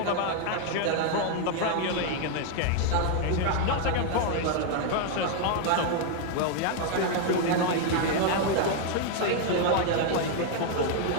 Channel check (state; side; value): different; both; correlation 0.00